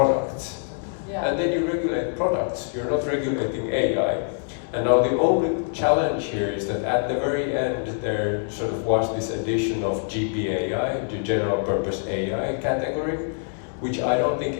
Yeah. And then you regulate products, you're not regulating AI. And now the only challenge here is that at the very end, there sort of was this addition of GPAI, the general purpose AI category, which I don't think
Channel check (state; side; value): silent; right; 62 dB below the other